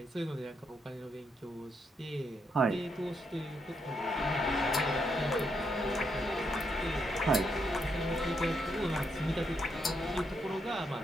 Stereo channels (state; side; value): normal; both; correlation 0.79